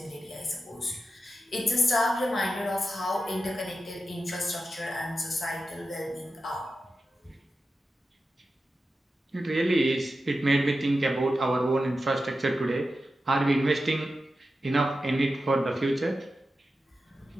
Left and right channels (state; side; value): normal; both; correlation 0.91